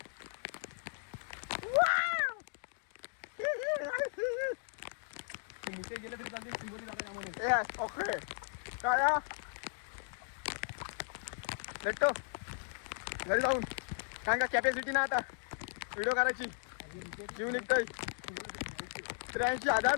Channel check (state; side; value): silent; right; digital silence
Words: मुके गेले तरी चालते चिंबोरी जाता त्यामध्ये. ओके काय भेटतो घरी जाऊन. कारण का कॅपॅसिटी ना आता व्हिडिओ करायची. जीव निघतोय.